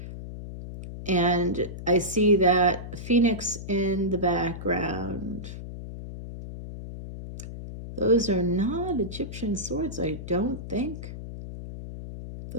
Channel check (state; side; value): noise; left; hum, 10 dB below the sound